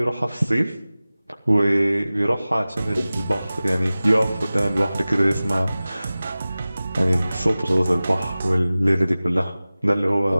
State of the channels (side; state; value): both; inverted; correlation -0.97